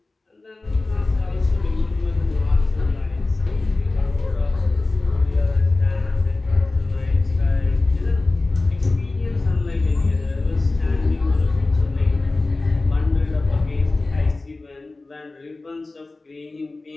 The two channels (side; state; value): right; quieter; 3.3 dB